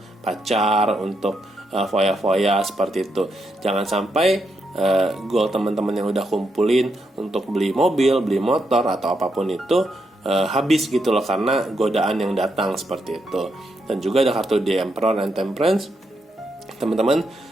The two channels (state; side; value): normal; both; correlation 0.81